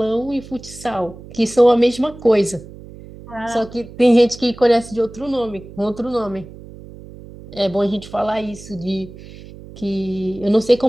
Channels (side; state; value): right; noise; hum, 17 dB below the sound